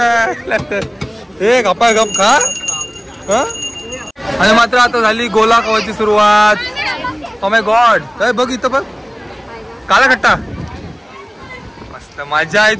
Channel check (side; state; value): both; identical; correlation 1.00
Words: दे एक गप्पा गप खा. आणि मात्र आता झाली गोला खावायची सुरुवात. Oh my God. बघ इथं बघ काला खट्टा. मस्त मजा आहे